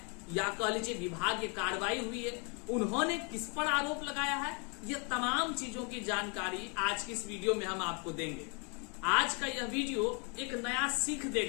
या कह लीजिए विभागीय कार्रवाई हुई है, उन्होंने किस पर आरोप लगाया है, ये तमाम चीजों की जानकारी आज की इस वीडियो में हम आपको देंगे। आज का यह वीडियो एक नया सीख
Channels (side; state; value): right; quieter; 35.2 dB